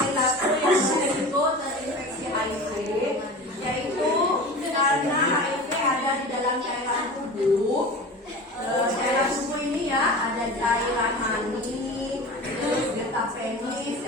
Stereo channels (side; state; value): both; normal; correlation 0.34